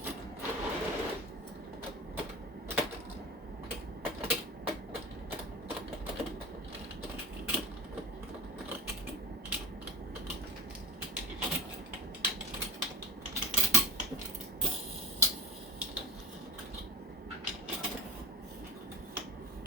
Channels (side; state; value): both; normal; correlation 0.31